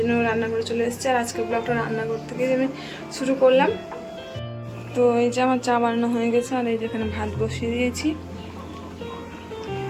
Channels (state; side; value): identical; both; correlation 1.00